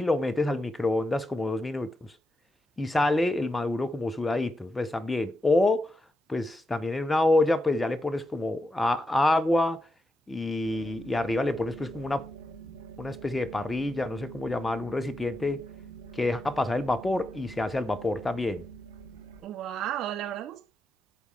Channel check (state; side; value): normal; both; correlation 0.87